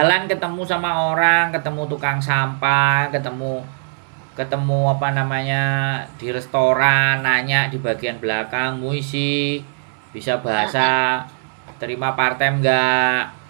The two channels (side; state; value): left; silent; 66 dB below the other